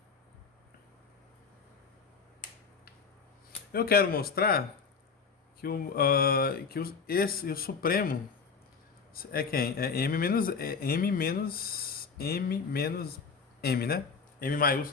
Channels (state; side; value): quieter; right; 5.5 dB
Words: Eu quero mostrar o supremo é quem? É M menos M, né? M